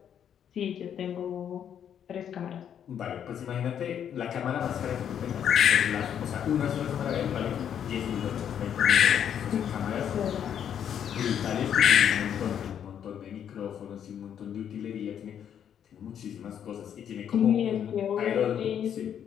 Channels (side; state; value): right; quieter; 9.0 dB